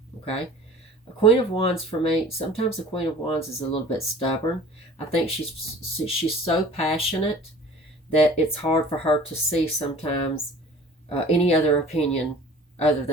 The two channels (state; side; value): normal; both; correlation 0.45